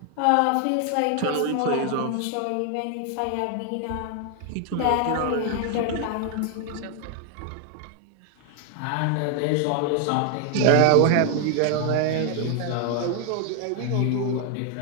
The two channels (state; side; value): different; both; correlation 0.00